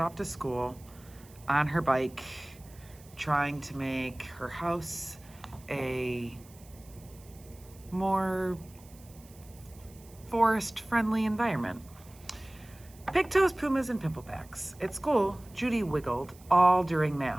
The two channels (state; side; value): noise; right; hiss, 24 dB below the sound